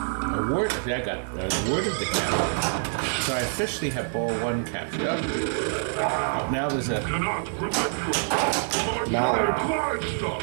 Award. I got awarded the capture. So I officially have ball one captured. Oh, now there's a. Mallard.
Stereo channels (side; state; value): left; silent; digital silence